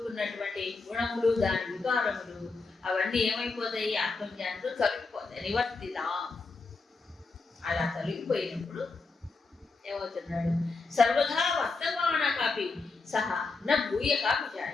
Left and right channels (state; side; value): quieter; right; 4.0 dB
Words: గుణములు, దాని వికారములు అవన్నీ ఏమైపోతాయి? ఆత్మజ్ఞానంతో తొలగిపోతాయి. నివర్తిదా అలా తొలగిపోయినప్పుడు ఏమవుతున్నాడు? సర్వదా వర్తమాన కాపి సహా నా భూయ కాపి